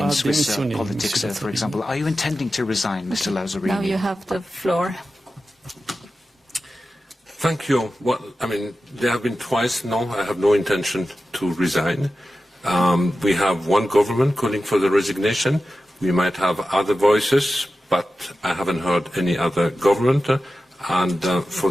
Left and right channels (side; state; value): both; normal; correlation 0.93